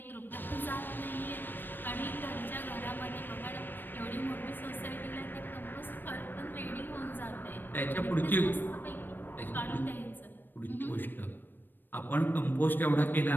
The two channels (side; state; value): right; late; 0.093 ms